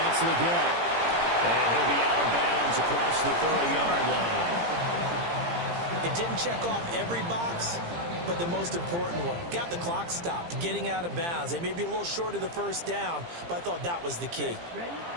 the get. And he'll be out of bounds across the 30-yard line. It didn't check off every box, but the most important one. Got the clock stopped, getting out of bounds. They may be a little short of the first down, but I thought that was the key.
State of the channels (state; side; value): late; left; 17 ms